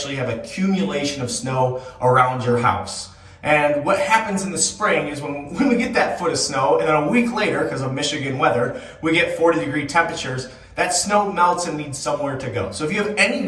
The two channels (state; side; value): identical; both; correlation 1.00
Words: have accumulation of snow around your house. And what happens in the spring is when we get that foot of snow, and then a week later, because of Michigan weather, we get 40-degree temperatures, that snow melts and needs somewhere to go. So if you have any